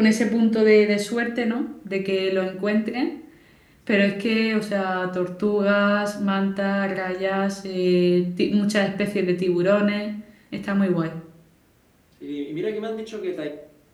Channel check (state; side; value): identical; both; correlation 1.00